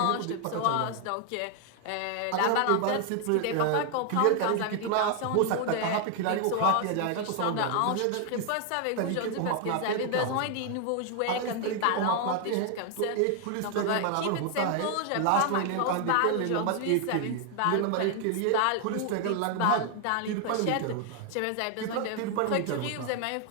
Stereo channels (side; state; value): both; different; correlation 0.00